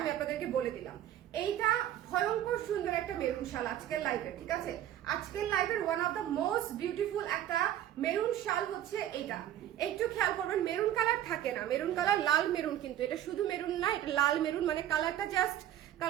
আমি আপনাদেরকে বলে দিলাম। এইটা ভয়ঙ্কর সুন্দর একটা মেরুন শাল আজকের লাইভে, ঠিক আছে? আজকের লাইভের one of the most beautiful একটা মেরুন শাল হচ্ছে এইটা। একটু খেয়াল করবেন, মেরুন কালার থাকে না, মেরুন কালার লাল মেরুন, কিন্তু এটা শুধু মেরুন না, এটা লাল মেরুন, মানে কালারটা জাস্ট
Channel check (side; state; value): left; quieter; 12.0 dB